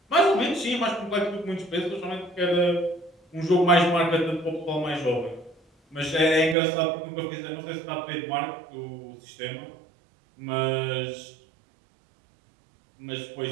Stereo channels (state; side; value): drops out; left; at 6.6 s